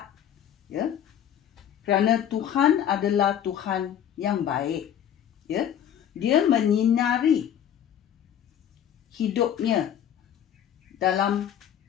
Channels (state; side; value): quieter; right; 9.8 dB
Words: Ya. Kerana Tuhan adalah Tuhan yang baik. Ya. Dia menyinari hidupnya dalam